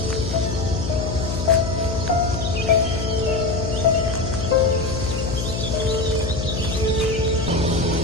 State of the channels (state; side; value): noise; left; hum, 4 dB below the sound